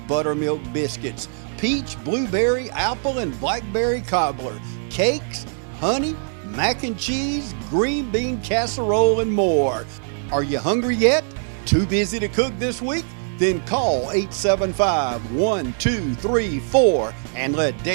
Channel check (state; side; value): silent; left; digital silence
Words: buttermilk biscuits, peach, blueberry, apple, and blackberry cobbler, cakes, honey, mac and cheese, green bean casserole, and more. Are you hungry yet? Too busy to cook this week? Then call 875-1234 and let